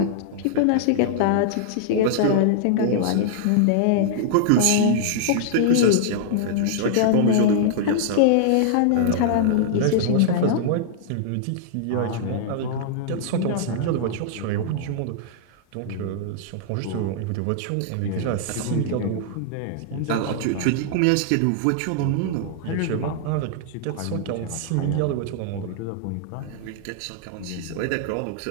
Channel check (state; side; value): different; both; correlation -0.01